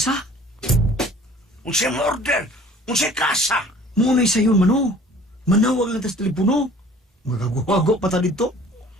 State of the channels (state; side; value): normal; both; correlation 0.50